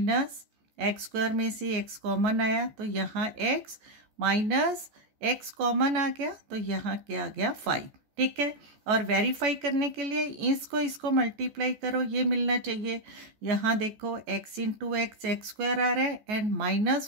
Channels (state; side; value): late; left; 14 ms